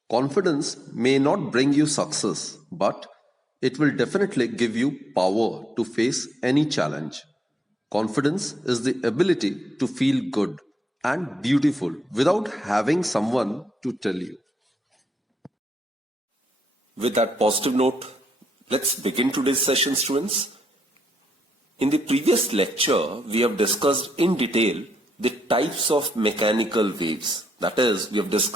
Confidence may not bring you success, but it will definitely give you power to face any challenge. Confidence is the ability to feel good and beautiful without having someone to tell you. With that positive note, let's begin today's session, students. In the previous lecture, we have discussed in detail the types of mechanical waves. That is, we have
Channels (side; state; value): both; normal; correlation 0.79